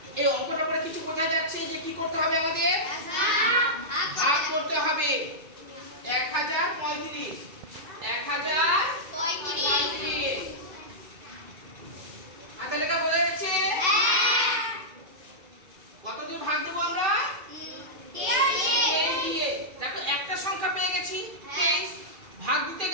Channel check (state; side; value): late; left; 2.5 ms